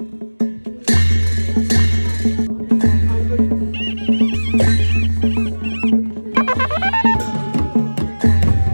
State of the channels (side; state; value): both; inverted; correlation -1.00